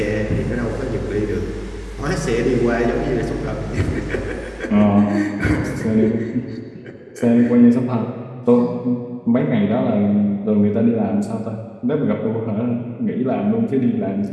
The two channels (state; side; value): identical; both; correlation 1.00